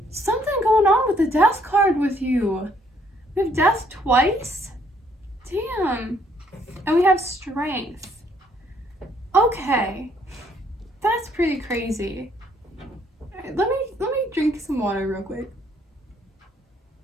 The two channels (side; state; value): both; normal; correlation 0.67